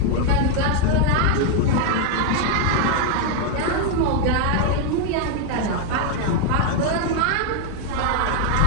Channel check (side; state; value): both; different; correlation 0.01